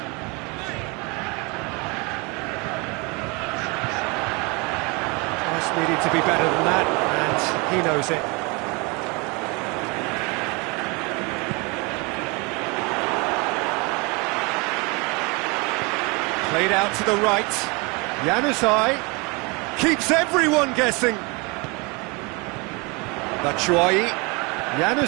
Just needed to be better than that, and he knows it. Played out to the right. Januzaj keeps everyone guessing. Batshuayi.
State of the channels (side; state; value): left; quieter; 28.6 dB